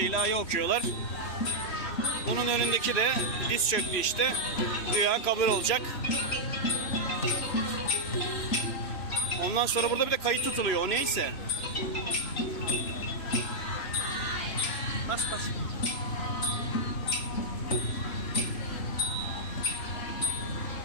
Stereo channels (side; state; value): right; late; 3.1 ms